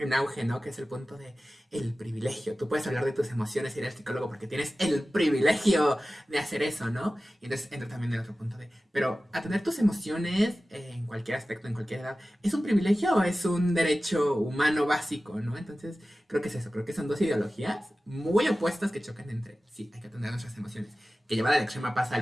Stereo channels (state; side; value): normal; both; correlation 0.96